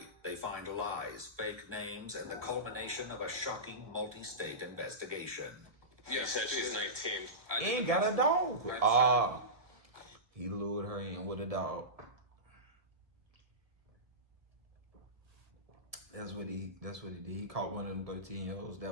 they find lies, fake names, and the culmination of a shocking multi-state investigation. You said she's 19. And got a dog. He lured her in with a dog. That's what he did. He caught one of them 13-year-olds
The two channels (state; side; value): late; left; 1.2 ms